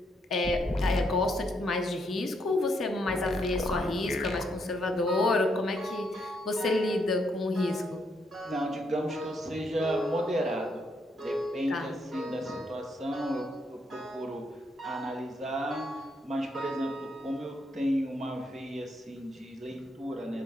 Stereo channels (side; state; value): both; normal; correlation 0.76